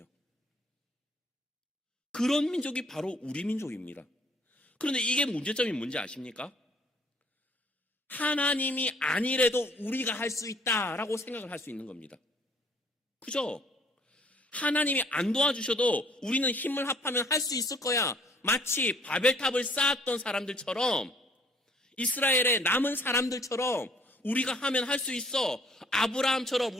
그런 민족이 바로 우리 민족입니다. 그런데 이게 문제점이 뭔지 아십니까? 하나님이 아니래도 우리가 할 수 있다라고 생각을 할 수 있는 겁니다. 그죠? 하나님이 안 도와주셔도 우리는 힘을 합하면 할 수 있을 거야. 마치 바벨탑을 쌓았던 사람들처럼, 이스라엘의 남은 사람들처럼 우리가 하면 할 수 있어. 아브라함처럼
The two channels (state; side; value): normal; both; correlation 0.60